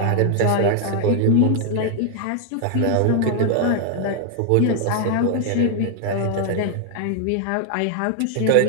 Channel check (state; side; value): different; both; correlation 0.00